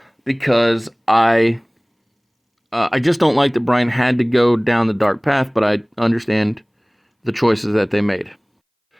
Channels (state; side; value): identical; both; correlation 1.00